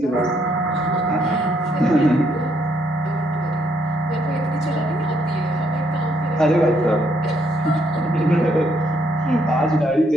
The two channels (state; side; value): normal; both; correlation 0.71